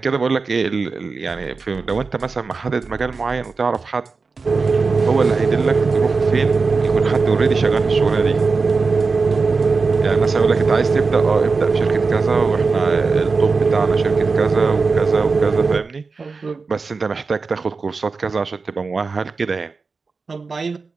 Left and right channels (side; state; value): left; quieter; 4.4 dB